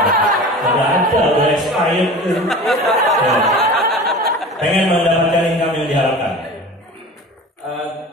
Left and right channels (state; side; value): normal; both; correlation 0.37